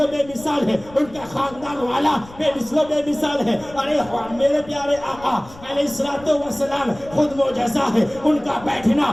و بے مثال ہے، ان کا خاندان والا بے مثل و بے مثال ہے. ارے میرے پیارے آقا علیہ السلام خود معجزہ ہے، ان کا بیٹھنا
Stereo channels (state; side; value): noise; left; rumble, 20 dB below the sound